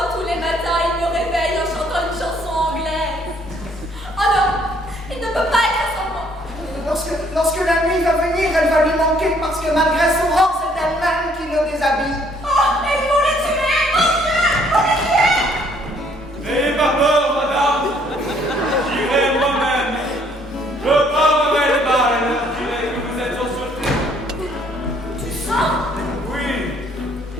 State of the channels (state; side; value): normal; both; correlation 0.64